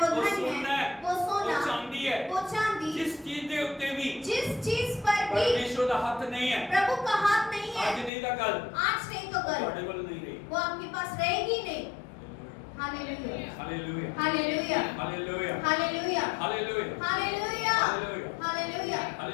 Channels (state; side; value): drops out; right; at 8.1 s